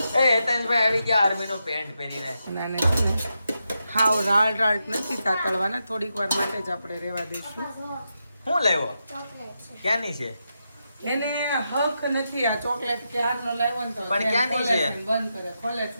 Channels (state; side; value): inverted; both; correlation -0.86